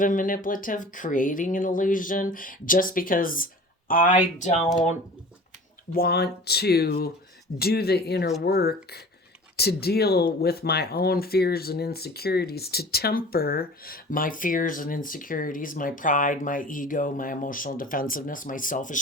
and manipulative, creating an illusion just because I don't want to do the inner work to deal with my own fears and insecurities, to temper my fears and insecurities, my pride, my ego, my emotional defensiveness, my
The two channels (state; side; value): normal; both; correlation 0.42